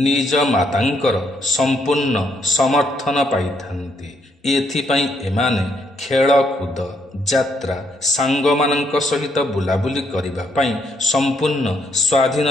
ନିଜ ମାତାଙ୍କର ସମ୍ପୂର୍ଣ୍ଣ ସମର୍ଥନ ପାଇଥାନ୍ତି। ଏଥିପାଇଁ ଏମାନେ ଖେଳକୁଦ, ଯାତ୍ରା, ସାଙ୍ଗମାନଙ୍କ ସହିତ ବୁଲାବୁଲି କରିବା ପାଇଁ ସମ୍ପୂର୍ଣ୍ଣ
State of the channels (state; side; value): normal; both; correlation 0.74